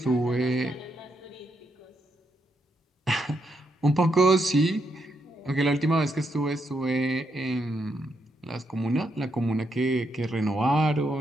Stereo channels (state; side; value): normal; both; correlation 0.79